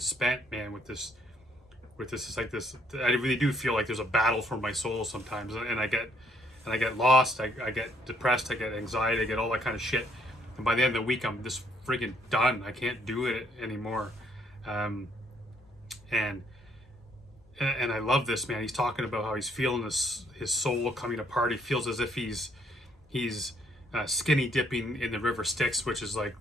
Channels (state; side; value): normal; both; correlation 0.67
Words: man, with this. It's like this. I really do feel like there's a battle for my soul sometimes, and I get lost. I get depressed. I get anxiety. I get all that kind of shit. And by the end of the week, I'm just friggin' done. I can't do it anymore. And I love this, man. He's talking about how he's feeling his soul coming apart. He feels as if he's skinny dipping in the river Styx, which is like